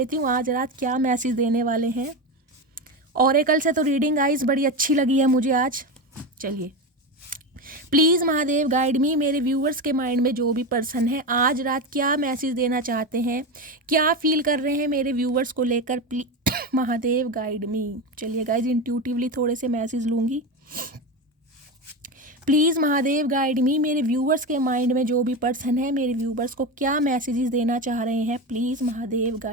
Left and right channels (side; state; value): both; normal; correlation 0.19